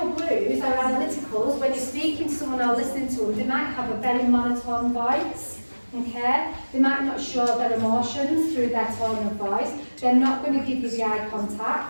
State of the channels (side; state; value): both; inverted; correlation -1.00